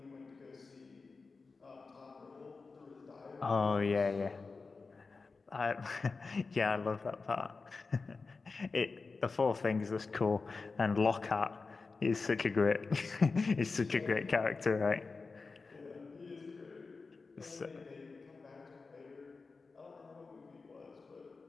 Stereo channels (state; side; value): quieter; right; 4.2 dB